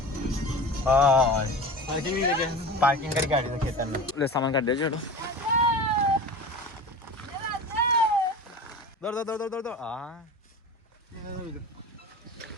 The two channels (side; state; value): both; normal; correlation 0.34